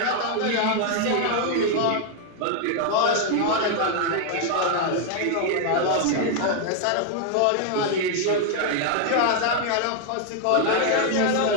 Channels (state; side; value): different; both; correlation 0.00